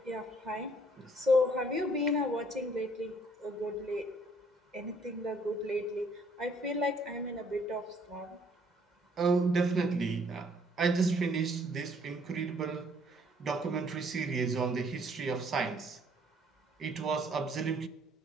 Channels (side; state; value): both; normal; correlation 0.63